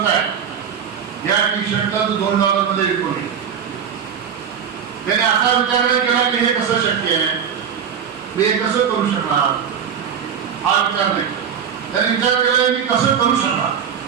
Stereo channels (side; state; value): left; quieter; 7.7 dB